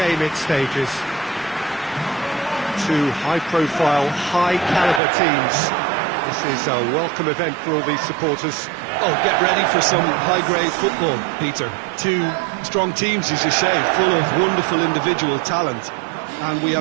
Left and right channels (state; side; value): drops out; left; at 5.0 s